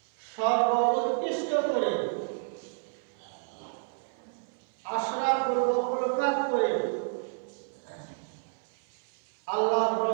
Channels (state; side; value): silent; left; 58 dB below the other